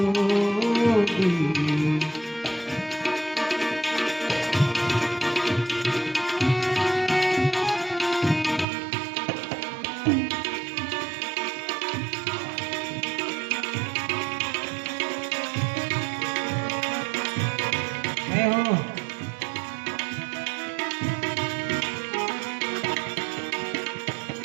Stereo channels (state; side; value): drops out; left; at 8.7 s